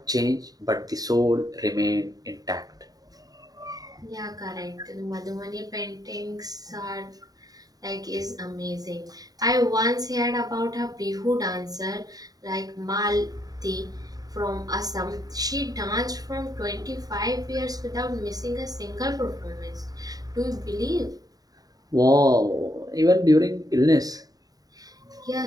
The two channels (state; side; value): late; left; 0.18 ms